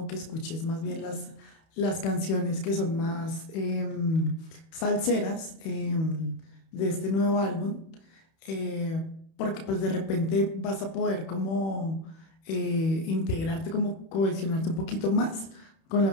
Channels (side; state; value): right; late; 31 ms